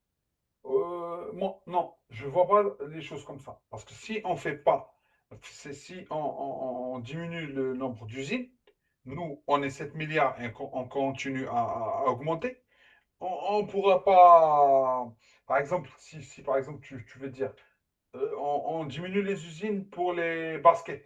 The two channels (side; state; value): both; identical; correlation 1.00